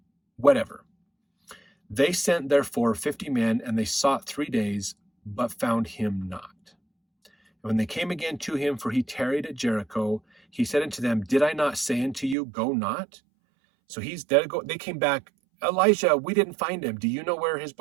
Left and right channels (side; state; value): left; drops out; at 12.4 s